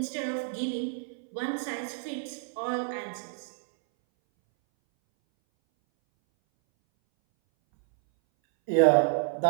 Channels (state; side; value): silent; left; 59 dB below the other